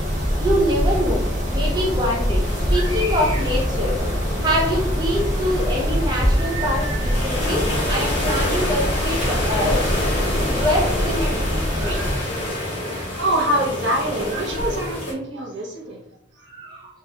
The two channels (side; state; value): both; normal; correlation 0.53